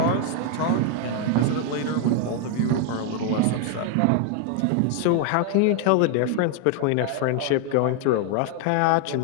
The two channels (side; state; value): both; different; correlation 0.00